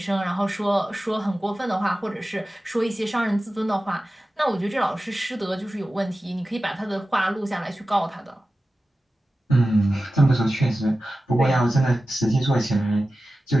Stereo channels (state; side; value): normal; both; correlation 0.94